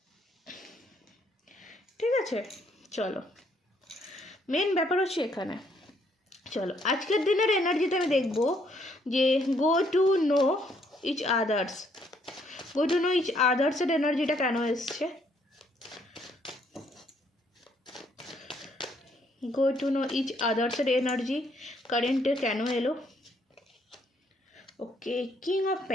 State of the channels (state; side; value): normal; both; correlation 0.69